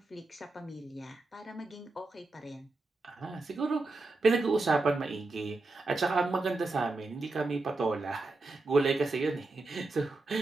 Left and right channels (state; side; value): quieter; left; 3.2 dB